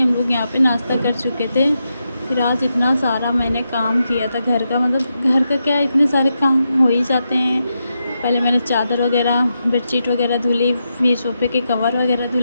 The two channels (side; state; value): both; inverted; correlation -0.86